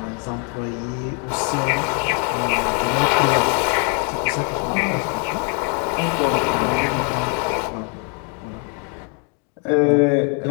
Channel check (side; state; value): right; quieter; 39.4 dB